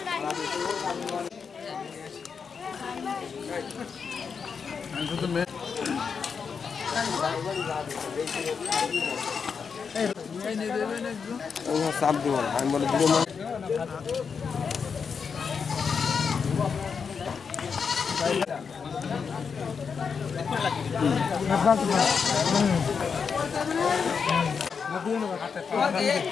চাপ দিব না, আমি বলে দিব না।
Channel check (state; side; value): quieter; right; 6.0 dB